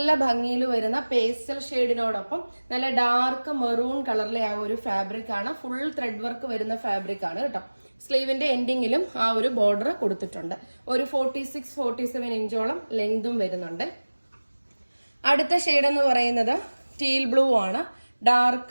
ഭംഗിയിൽ വരുന്ന പേസ്റ്റൽ ഷെയ്ഡിനോടൊപ്പം നല്ല ഡാർക്ക് മെറൂൺ കളറിലെ ആ ഒരു ഫാബ്രിക് ആണ്. ഫുൾ ത്രെഡ് വർക്ക് വരുന്ന ഫാബ്രിക് ആണ് കേട്ടോ. സ്ലീവിന്റെ എൻഡിങ്ങിലും ആ ഒരു ബോർഡർ കൊടുത്തിട്ടുണ്ട്. ഒരു 46-47 ഇഞ്ചോളം ലെങ്തും വരുന്നുണ്ട്. അടുത്ത ഷെയ്ഡ് എന്ന് പറയുന്നത് ടീൽ ബ്ലൂ ആണ്.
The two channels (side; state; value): both; inverted; correlation -1.00